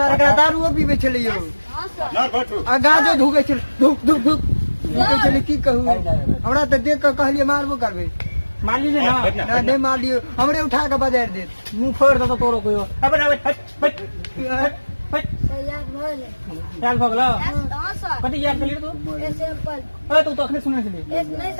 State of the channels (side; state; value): both; inverted; correlation -1.00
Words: एकरा दारू पीबे छली यो हाँ सर ना बैठू आ गाजो धुके छल धुक धुक धुक धुके छली की कहू हमरा त देख के कहलिए मारबो करबे मान लीजिए ना ना नहीं मार लियो हमरे उठा के बाजार दे मुंह फोड़ दो तोरो कोई अबे अबे हट सर याद भइल याद भगला हाँ सर कथी याद करिए तू ऐसे एप्पल अरे तू तो अखने सुने छली नहीं